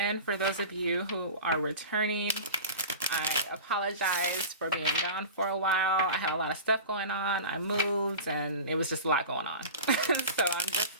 For those of you who are returning, I apologize for being gone for a while. I had a lot of stuff going on. I moved, and it was just a lot going on. So I'm just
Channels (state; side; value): inverted; both; correlation -0.33